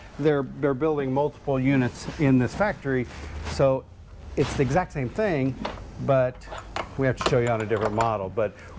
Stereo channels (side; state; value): both; identical; correlation 1.00